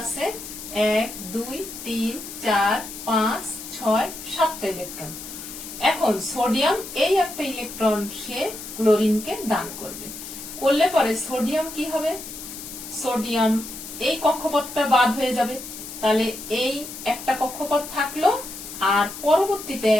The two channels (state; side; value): noise; left; hiss, 11 dB below the sound